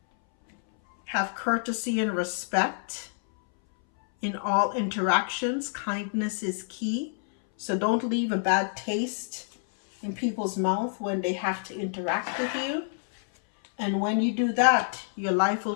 Have courtesy and respect in all interactions. Kindness is key. So don't leave a bad taste in people's mouth when they have to interact with you. And when you do that, your life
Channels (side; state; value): right; silent; 60 dB below the other